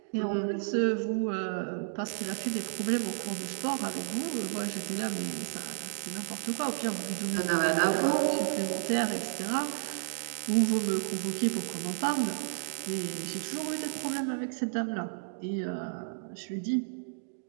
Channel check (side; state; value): left; silent; digital silence